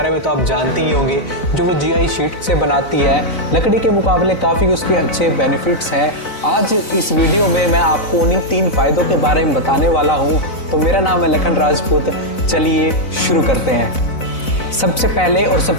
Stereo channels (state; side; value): late; right; 4.0 ms